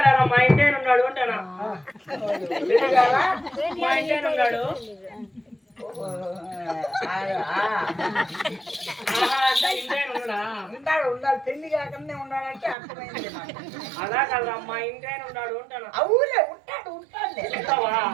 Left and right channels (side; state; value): left; drops out; at 12.8 s